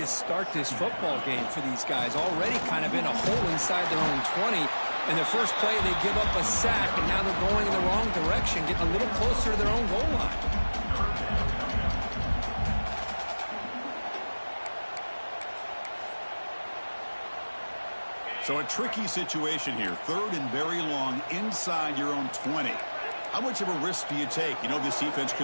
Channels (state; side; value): inverted; both; correlation -1.00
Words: start this football game for these guys. Already kind of in a hole inside their own 20. In their first play, they give up a sack, and now they're going in the wrong direction, getting a little closer to their own goal line. So a tricky situation here. Third and very long inside your own 20. How much of a risk do you take? You know this defense